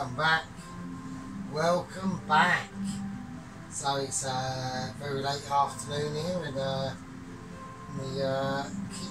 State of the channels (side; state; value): both; identical; correlation 1.00